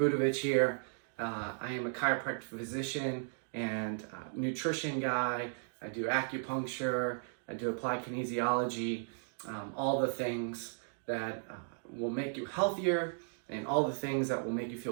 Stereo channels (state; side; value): silent; left; digital silence